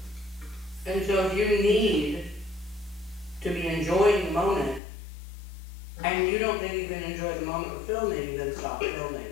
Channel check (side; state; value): right; drops out; at 4.8 s